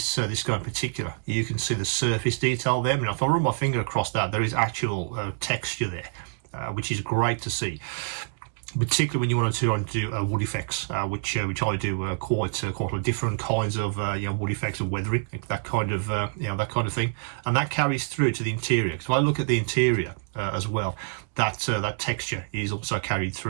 guy in particular, you can see the surface detail there. I mean, if I run my finger across that, there is actual texture there. which is great to see, particularly when you want to do wood effects, which I do quite a lot of different kinds of wood effects and weathering, that kind of that kind of thing, and that carries through to the interior. So I look at the interior as well. That texture is also carried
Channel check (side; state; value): left; silent; digital silence